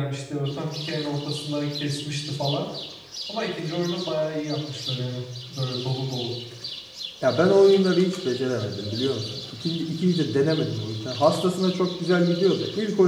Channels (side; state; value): both; identical; correlation 1.00